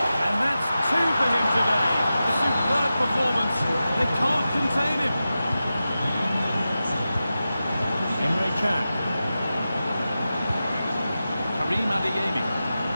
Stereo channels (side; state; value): both; inverted; correlation -0.93